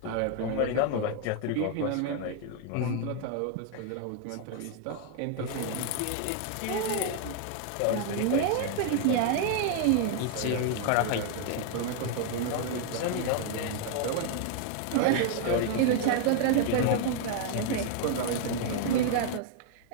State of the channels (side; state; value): both; different; correlation 0.00